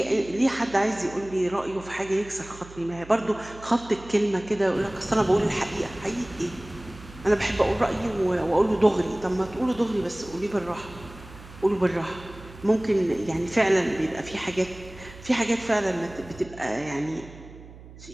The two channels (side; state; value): right; noise; hum, 18 dB below the sound